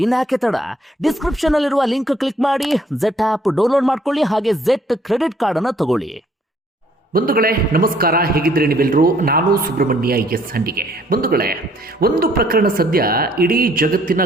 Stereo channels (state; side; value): normal; both; correlation 0.63